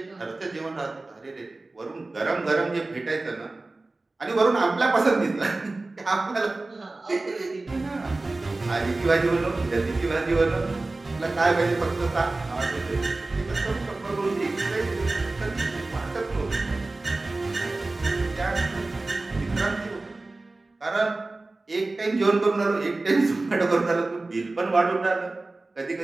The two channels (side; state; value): left; quieter; 3.2 dB